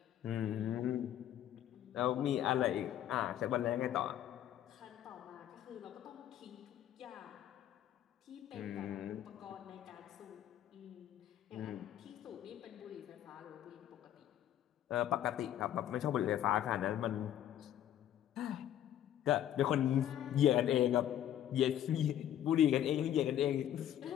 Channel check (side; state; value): right; quieter; 11.3 dB